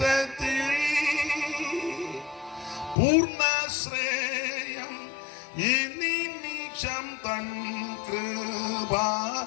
പൂർണ്ണശ്രേയം ഈ നിമിഷം തൻ കൃപ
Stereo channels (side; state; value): right; drops out; at 3.0 s